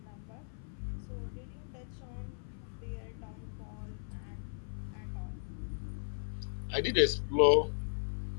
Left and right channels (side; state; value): right; silent; 53 dB below the other